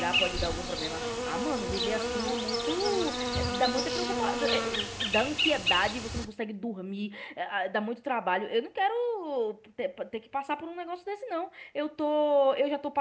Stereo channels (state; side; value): identical; both; correlation 1.00